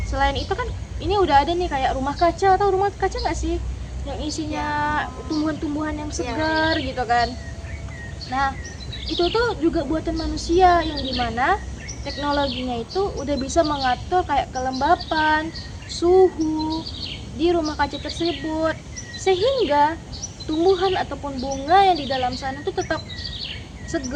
Selain itu kan ini udah ada nih kayak rumah kaca, atau rumah kaca nggak sih, yang isinya tumbuhan-tumbuhan yang segar gitu kan. Nah, itu tuh juga buatan manusia, yang dimana teknologinya itu udah bisa mengatur kayak kelembapan, suhu di rumah kaca tersebut, sehingga tumbuhan ataupun bunga yang di dalam sana tuh tetap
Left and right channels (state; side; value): identical; both; correlation 1.00